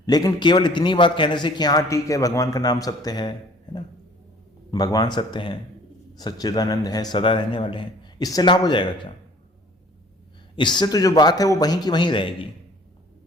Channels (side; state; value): both; normal; correlation 0.53